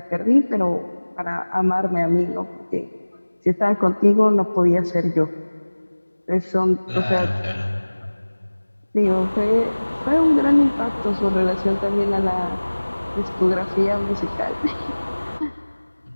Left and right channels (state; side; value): inverted; both; correlation -1.00